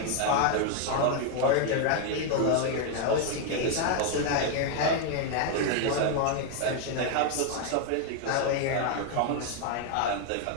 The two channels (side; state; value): both; different; correlation 0.01